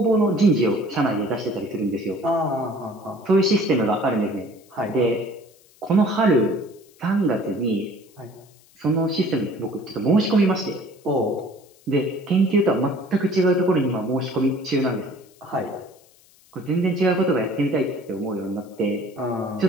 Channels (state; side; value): noise; left; hiss, 29 dB below the sound